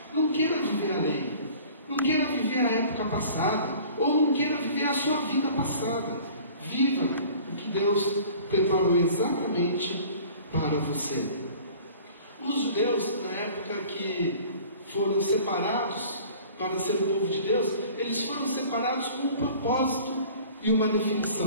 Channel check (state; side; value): inverted; both; correlation -0.47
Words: não queira viver a lei, não queira viver a época passada, ou não queira viver a sua vida passada. Viva o que Deus preparou exatamente para você. Os judeus, na época que foram separados para ser o povo de Deus, eles foram separados com um propósito e uma